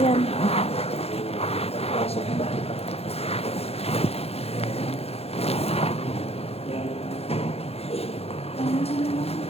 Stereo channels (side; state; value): right; late; 0.29 ms